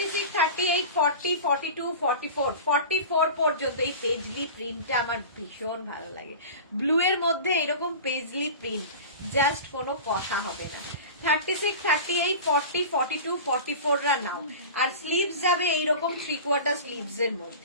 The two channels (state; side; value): inverted; both; correlation -0.34